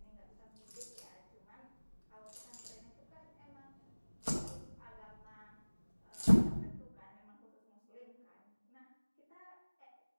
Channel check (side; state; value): both; inverted; correlation -1.00